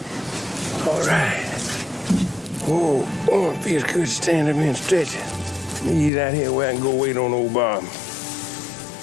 All right. Whoa, it feels good standing up here and stretching. He's out here where I can go wait on old Bob.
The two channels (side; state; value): right; drops out; at 6.1 s